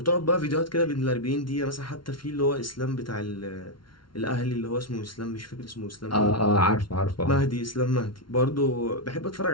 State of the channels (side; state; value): right; late; 0.73 ms